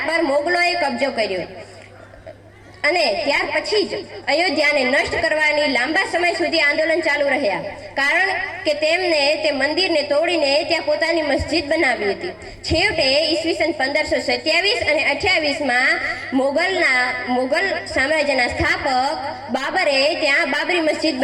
પર મોગલોએ કબજો કર્યો અને ત્યાર પછી જ અયોધ્યાને નષ્ટ કરવાની લાંબા સમય સુધી આંદોલન ચાલુ રહ્યા, કારણ કે તેમને તે મંદિરને તોડીને ત્યાં પોતાની મસ્જિદ બનાવી હતી। છેવટે ઈસવીસન 1527 અને 28માં મોગલ સામ્રાજ્યના સ્થાપક બાબરે ત્યાં બાબરી મસ્જિદ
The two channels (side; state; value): both; identical; correlation 1.00